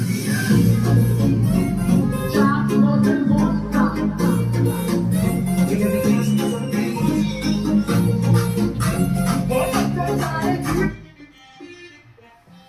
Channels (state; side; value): identical; both; correlation 1.00